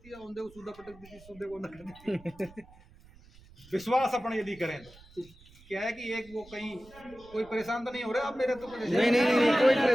है, औंधे को सूदा पटक देती है, सूदे को न कर देती है। विश्वास अपन यदि करें तो क्या है कि एक वो कहीं कोई परेशान तो नहीं हो रहा आप मेरे, तो नहीं कोई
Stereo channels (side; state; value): right; noise; rumble, 24 dB below the sound